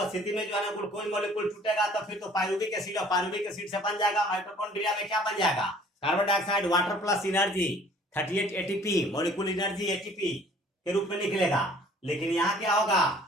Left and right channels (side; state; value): both; normal; correlation 0.54